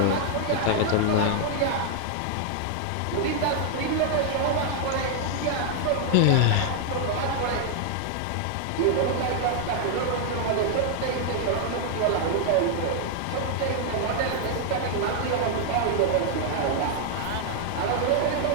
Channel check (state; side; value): different; both; correlation 0.00